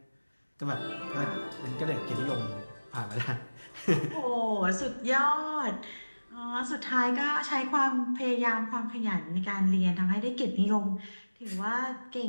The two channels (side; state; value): both; inverted; correlation -1.00